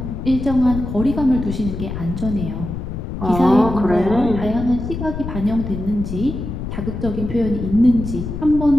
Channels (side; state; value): left; noise; rumble, 6 dB below the sound